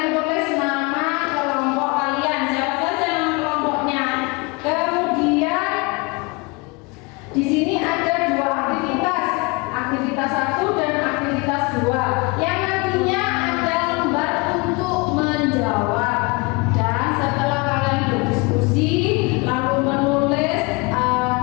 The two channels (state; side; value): quieter; right; 27.6 dB